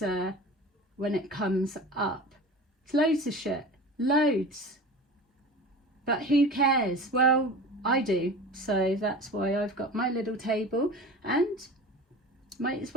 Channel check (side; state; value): both; normal; correlation 0.35